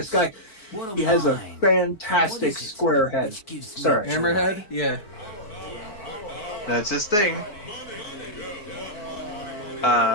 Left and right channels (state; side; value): late; right; 4.6 ms